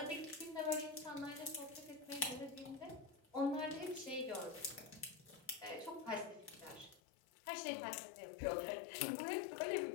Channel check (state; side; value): drops out; right; at 7.0 s